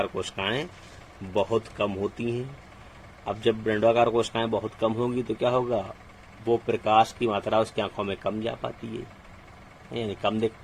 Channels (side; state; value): both; identical; correlation 1.00